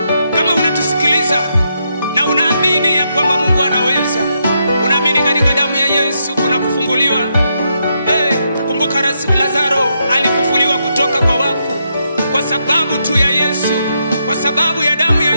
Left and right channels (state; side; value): inverted; both; correlation -0.80